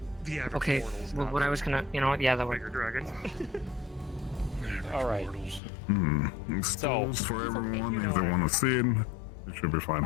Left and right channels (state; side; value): drops out; right; at 5.6 s